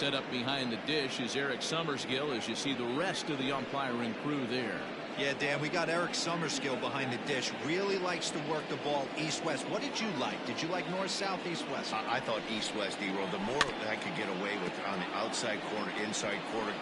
up behind the dish is Eric Summerskill as you see the rest of the umpiring crew there. Yeah, Dan, we got Eric Summerskill behind the dish. Really likes to work the ball east-west. What did you like? Did you like north-south, east-west? I thought east-west, D-roll. The more that I could get away with on the outside corner, inside corner,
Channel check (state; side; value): identical; both; correlation 1.00